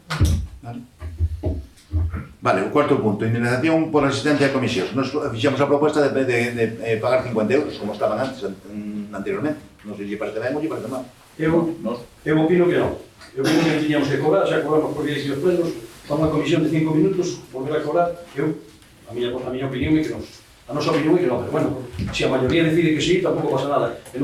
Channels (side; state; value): both; identical; correlation 1.00